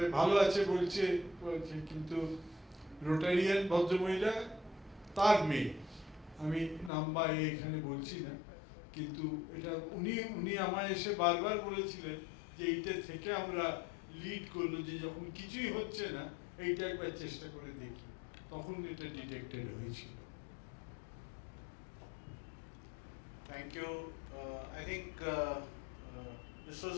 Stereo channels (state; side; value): drops out; right; at 6.9 s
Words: ভালো আছে বলছে, কিন্তু রোটারিয়ান ভদ্রমহিলা, তার মেয়ে, আমি নাম বা এখানে বলছি না, কিন্তু এটা উনি আমায় এসে বারবার বলেছিলেন যে এইটা থেকে আমরা লিড করলো যে যখন কিছুই হচ্ছে না এইটা একবার চেষ্টা করে দেখি, তখন এটা ডিটেক্টেড হয়েছিল। Thank you. I think this was